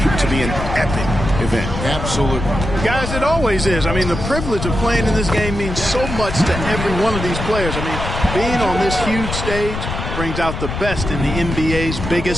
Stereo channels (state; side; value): noise; left; rumble, 5 dB below the sound